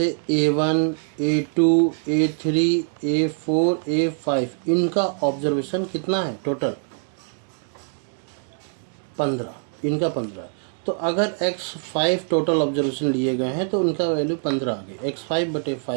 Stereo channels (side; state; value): left; silent; 63 dB below the other